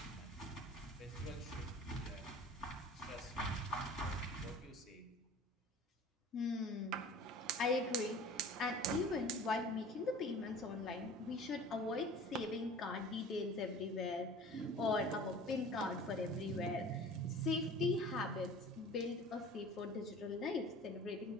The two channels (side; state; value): both; normal; correlation 0.43